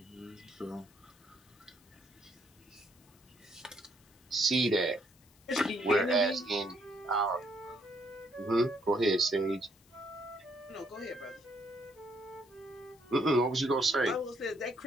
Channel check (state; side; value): noise; left; hiss, 29 dB below the sound